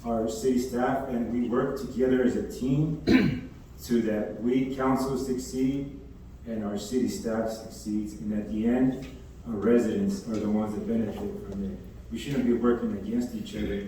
city staff and we work together as a team so that we council succeed and our city staff succeeds, and at the end, our residents are the ones that benefit from it. We shouldn't be working against each other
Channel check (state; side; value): identical; both; correlation 1.00